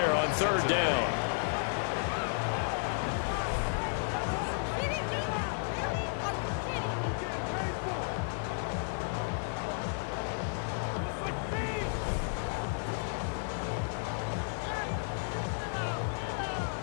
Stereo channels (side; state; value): right; silent; digital silence